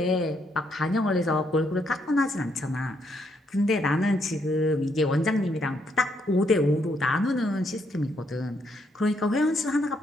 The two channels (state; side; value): normal; both; correlation 0.74